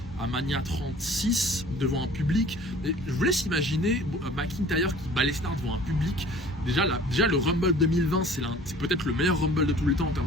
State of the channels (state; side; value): normal; both; correlation 0.48